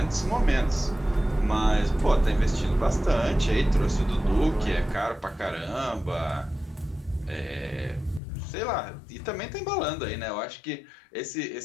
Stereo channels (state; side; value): drops out; right; at 8.2 s